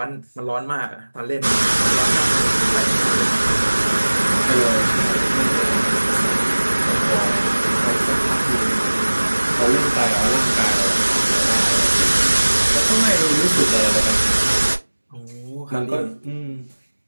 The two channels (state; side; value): inverted; both; correlation -1.00